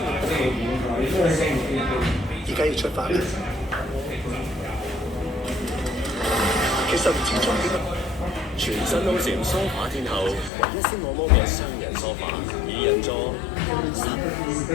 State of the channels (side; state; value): right; drops out; at 10.5 s